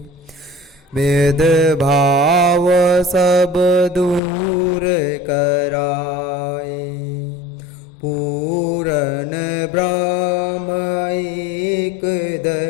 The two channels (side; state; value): right; drops out; at 4.2 s